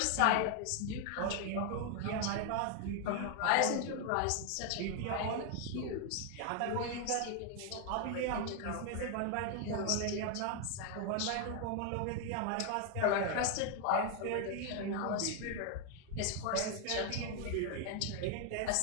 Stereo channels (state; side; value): different; both; correlation 0.00